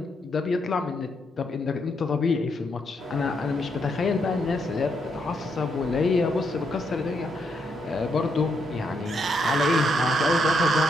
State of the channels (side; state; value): both; normal; correlation 0.77